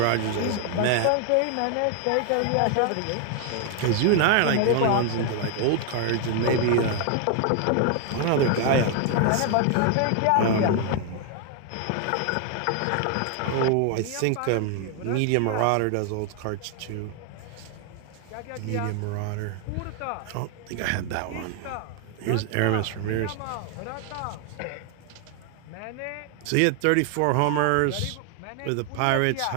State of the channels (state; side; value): different; both; correlation 0.00